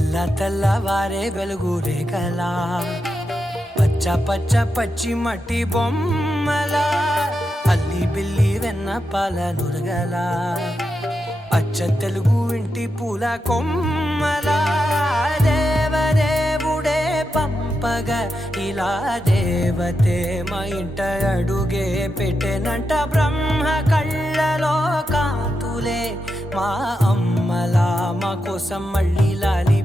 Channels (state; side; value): normal; both; correlation 0.87